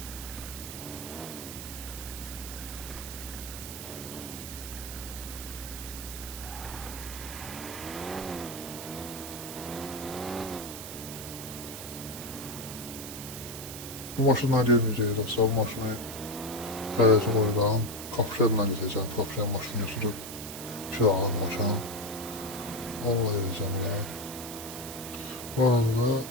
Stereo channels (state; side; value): noise; right; hiss, 9 dB below the sound